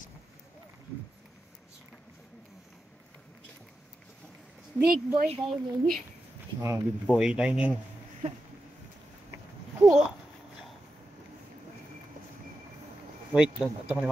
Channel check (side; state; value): both; normal; correlation 0.89